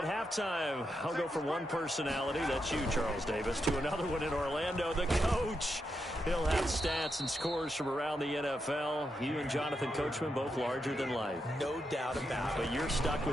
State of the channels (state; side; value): normal; both; correlation 0.84